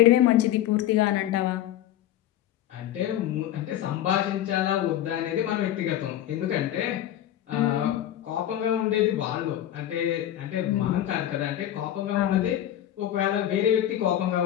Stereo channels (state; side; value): quieter; right; 12.2 dB